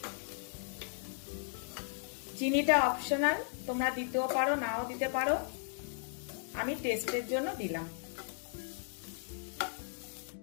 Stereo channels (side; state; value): right; silent; 54 dB below the other